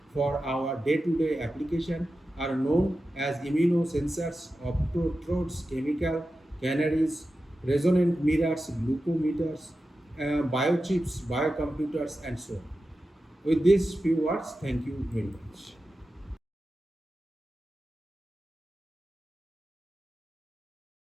for our day-to-day application, are known as immunosensors, optotrodes, chemical canaries, resonant mirrors, glucometers, biochips, biocomputers, and so on. With these few words, thank you very much.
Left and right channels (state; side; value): normal; both; correlation 0.92